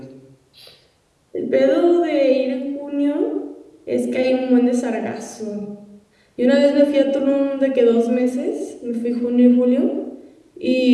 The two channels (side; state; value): both; identical; correlation 1.00